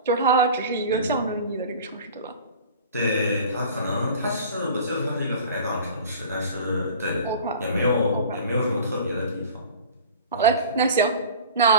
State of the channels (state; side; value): inverted; both; correlation -0.41